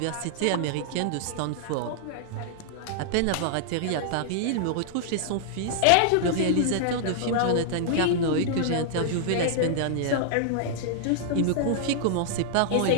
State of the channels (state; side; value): different; both; correlation -0.01